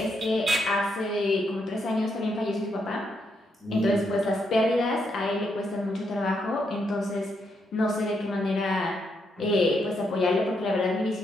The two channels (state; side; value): normal; both; correlation 0.79